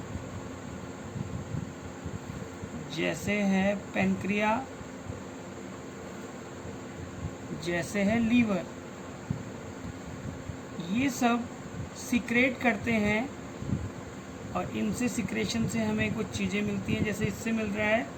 जैसे है पेनक्रिया, जैसे है लीवर। ये सब सीक्रेट करते हैं और इनसे सिक्रेशन से हमें कुछ चीज़ें मिलती हैं। जैसे इससे मिल रहा है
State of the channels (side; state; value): both; identical; correlation 1.00